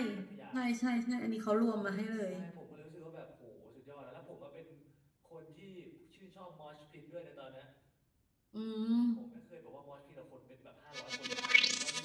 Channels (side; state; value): both; identical; correlation 1.00